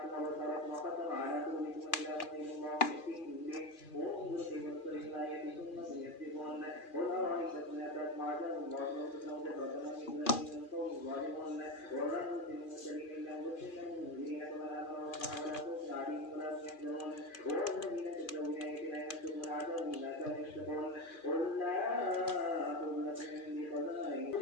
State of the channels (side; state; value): right; late; 2.4 ms